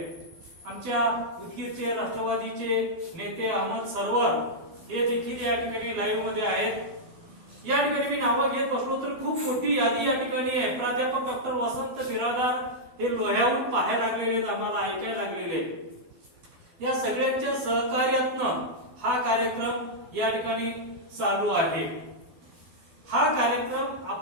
आमच्या उदगीरचे राष्ट्रवादीचे नेते अहमद सरवर हे देखील या ठिकाणी लाईव्ह मध्ये आहेत. या ठिकाणी मी नावं घेत बसलो तर खूप मोठी यादी या ठिकाणी आहे. प्राध्यापक डॉक्टर वसंत बिरादार हे लोह्याहून पाहायला लागलेले आहेत, आम्हाला ऐकायला लागलेले आहेत. या सगळ्यांच्या सहकार्यातनं हा कार्यक्रम या ठिकाणी चालू आहे. हा कार्यक्रम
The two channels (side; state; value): left; late; 12 ms